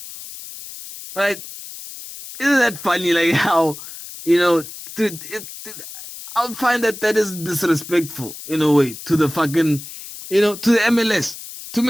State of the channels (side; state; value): left; noise; hiss, 13 dB below the sound